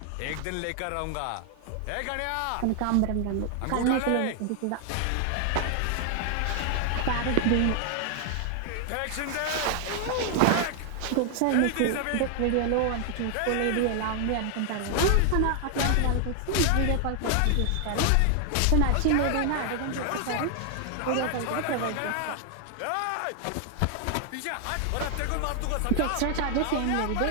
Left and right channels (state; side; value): different; both; correlation 0.00